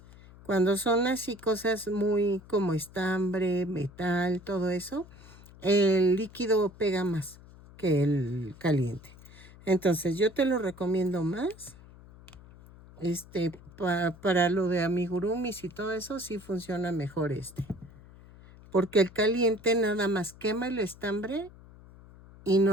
Cuando son así cosas muy como estambre, metal, todo eso, el líquido pega más que el caliente. Entonces yo te lo recomiendo más. Para lo de amigurumis y todo eso sí funciona mejor porque el caliente nada más quema el estambre y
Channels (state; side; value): noise; left; hum, 21 dB below the sound